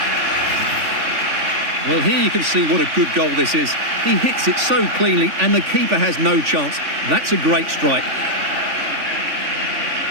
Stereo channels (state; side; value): late; left; 3.5 ms